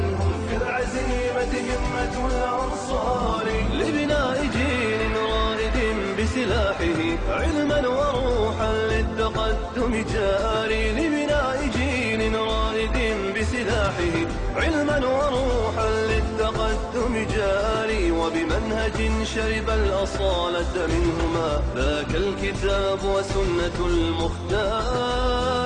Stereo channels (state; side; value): identical; both; correlation 1.00